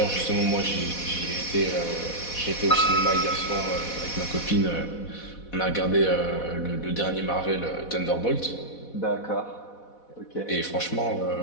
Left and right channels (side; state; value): right; late; 4.1 ms